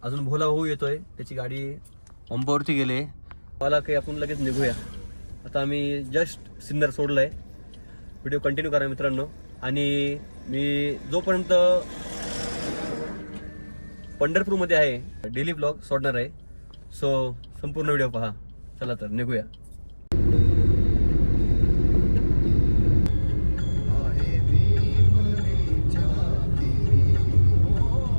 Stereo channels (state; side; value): inverted; both; correlation -1.00